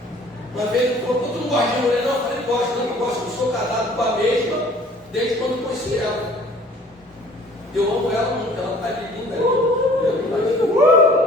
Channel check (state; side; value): normal; both; correlation 0.52